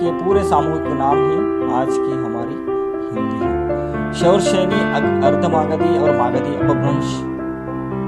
पूरे सामूहिक नाम ही आज की हमारी हिंदी है। शौरसेनी, अर्धमागधी और मागधी अपभ्रंश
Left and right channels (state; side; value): identical; both; correlation 1.00